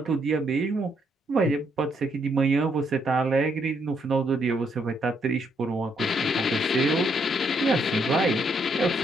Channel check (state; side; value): normal; both; correlation 0.74